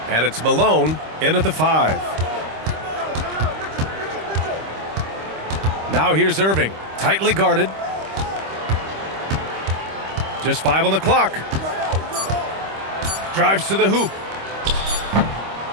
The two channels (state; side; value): late; left; 25 ms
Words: And it's Malone in at the 5. Now here's Irving, tightly guarded. Just 5 on the clock. Drives to the hoop.